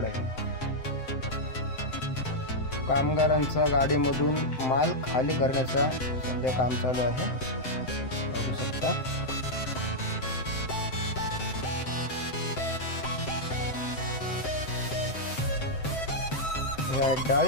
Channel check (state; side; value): late; right; 7.7 ms